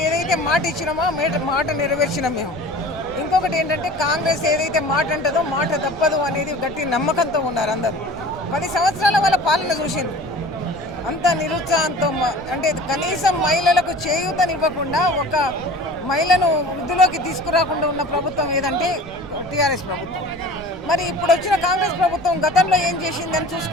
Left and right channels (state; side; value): noise; right; rumble, 19 dB below the sound